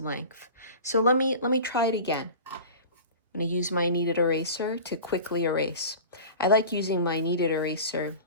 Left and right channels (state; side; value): inverted; both; correlation -0.36